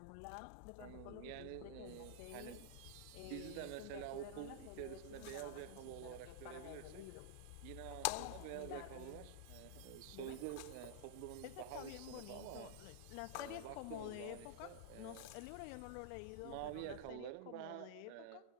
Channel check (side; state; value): both; different; correlation -0.01